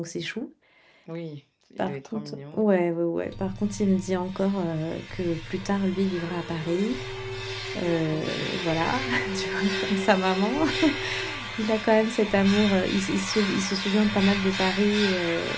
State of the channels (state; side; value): identical; both; correlation 1.00